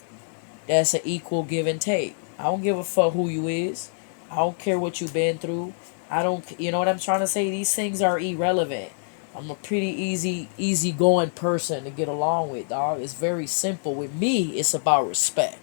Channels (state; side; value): silent; right; digital silence